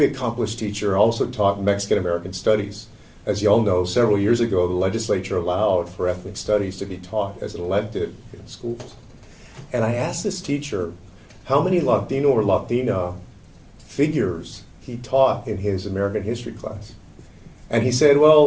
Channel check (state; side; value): identical; both; correlation 1.00